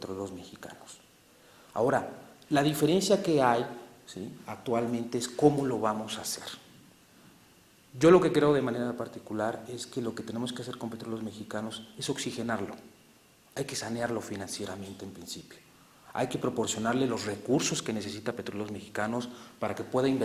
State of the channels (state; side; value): identical; both; correlation 1.00